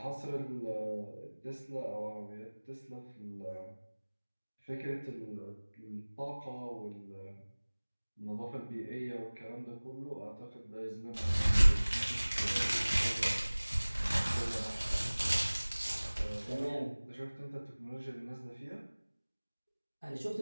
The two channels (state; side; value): inverted; both; correlation -1.00